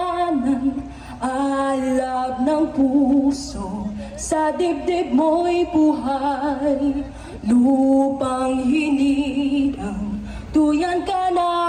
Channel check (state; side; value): identical; both; correlation 1.00